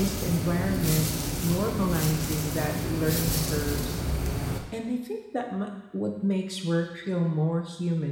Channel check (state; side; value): identical; both; correlation 1.00